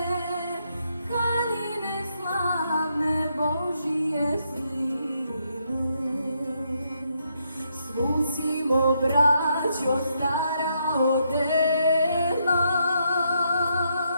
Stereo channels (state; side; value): inverted; both; correlation -0.77